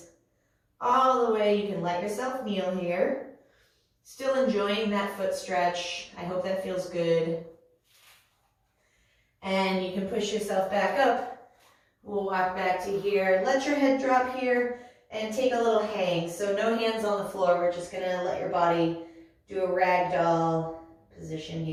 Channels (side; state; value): both; identical; correlation 1.00